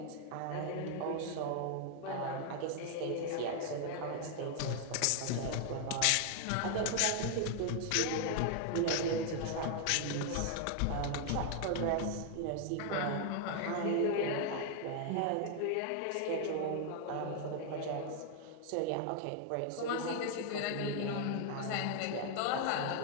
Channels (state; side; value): different; both; correlation 0.00